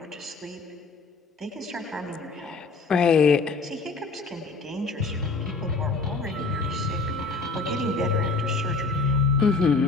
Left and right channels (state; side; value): quieter; right; 4.0 dB